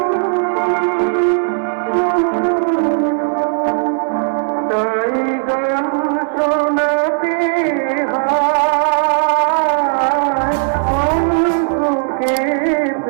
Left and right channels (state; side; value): silent; left; digital silence